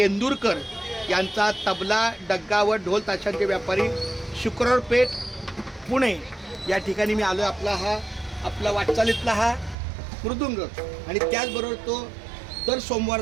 यांचा तबला, डग्गा व ढोल ताशांचे व्यापारी, शुक्रवार पेठ, पुणे या ठिकाणी मी आलो. आपला वाटचालीतला हा मृदुंग आणि त्याचबरोबर तो दर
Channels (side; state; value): left; drops out; at 9.8 s